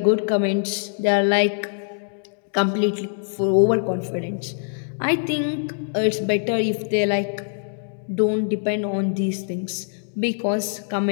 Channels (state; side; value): silent; right; 63 dB below the other